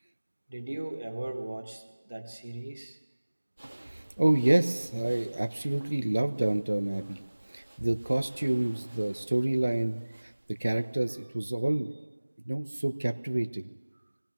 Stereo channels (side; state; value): both; inverted; correlation -1.00